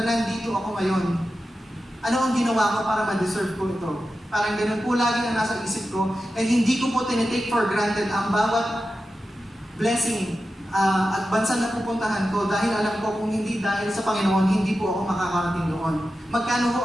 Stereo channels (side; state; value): both; normal; correlation 0.92